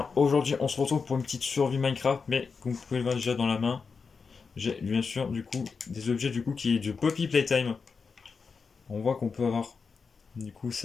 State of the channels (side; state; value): right; quieter; 5.2 dB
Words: Aujourd'hui, on se retrouve pour une petite survie Minecraft, mais comme vous pouvez le voir déjà dans la main, j'ai bien sûr du coup des objets du coup qui est du Poppy Playtime. On voit qu'on peut avoir du coup